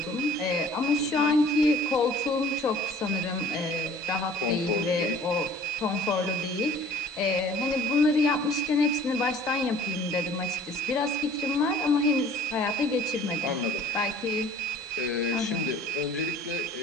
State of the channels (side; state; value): both; normal; correlation 0.50